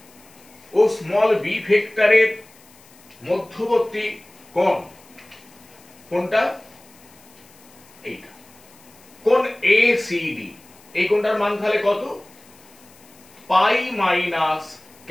ও স্মল বি ভেক্টরের মধ্যবর্তী কোণ কোনটা? এইটা কোণ এসিডি। এই কোণটার মান তাহলে কত? Pi minus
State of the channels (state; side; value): noise; left; hiss, 26 dB below the sound